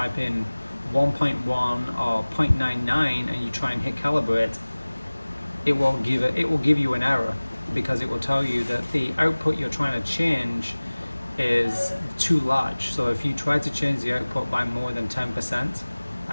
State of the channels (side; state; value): both; inverted; correlation -1.00